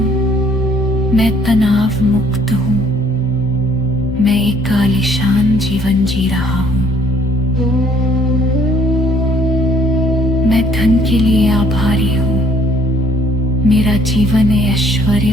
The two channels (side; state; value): both; normal; correlation 0.61